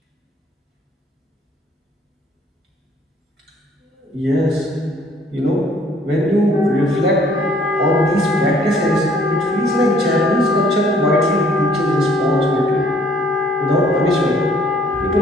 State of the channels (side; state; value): both; normal; correlation 0.60